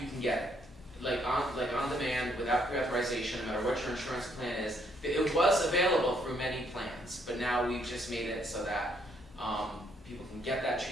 you can get it, like on demand, without pre-authorization, no matter what your insurance plan is. It was available through many plans, but now we've just made it so that people can get that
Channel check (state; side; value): normal; both; correlation 0.70